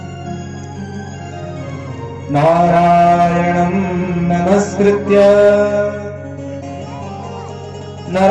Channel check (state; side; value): identical; both; correlation 1.00